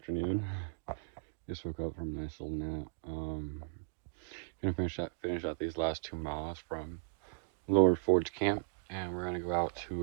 Just woke up from a nice little nap. Gonna finish out these last 2 miles from Lower Forge Camp, and we're gonna go out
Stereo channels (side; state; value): left; silent; digital silence